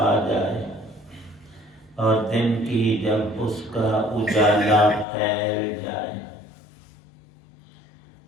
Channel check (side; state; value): right; drops out; at 5.1 s